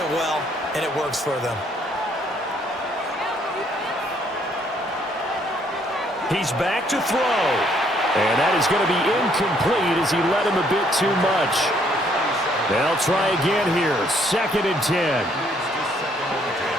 well, and it works for them. He's back to throw. And that is going to be incomplete as he led him a bit too much. They'll try again here. 2nd and 10.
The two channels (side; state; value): both; normal; correlation 0.67